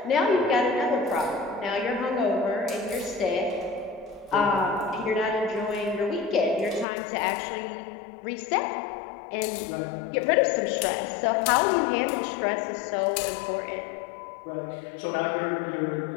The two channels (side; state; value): right; drops out; at 6.9 s